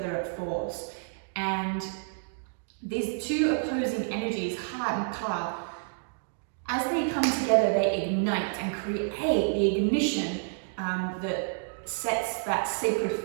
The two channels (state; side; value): silent; left; digital silence